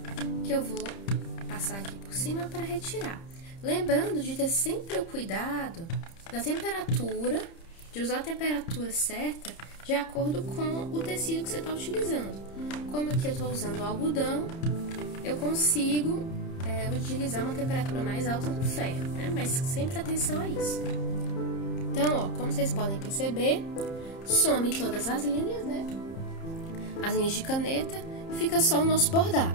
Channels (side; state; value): right; late; 30 ms